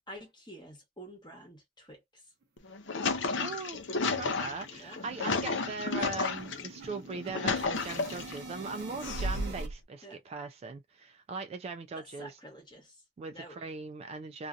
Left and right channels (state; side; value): normal; both; correlation -0.01